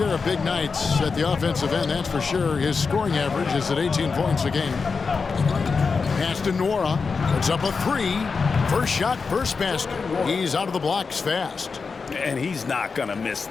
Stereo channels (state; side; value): quieter; right; 4.9 dB